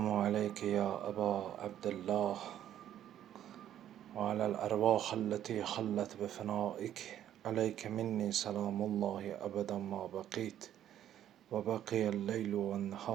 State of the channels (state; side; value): quieter; left; 11.1 dB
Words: aleyke ya Eba Abdullah ve alel ervah alleti hallet bi fenaik. عليك مني سلام الله أبدا ما بقيت وبقي الليل